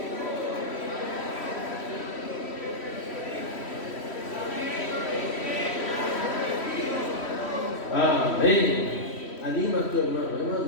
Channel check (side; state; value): right; late; 3.1 ms